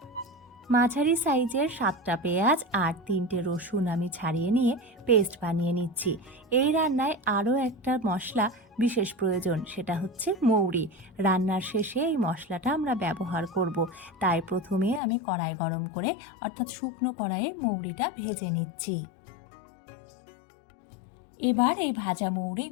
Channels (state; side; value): drops out; right; at 15.0 s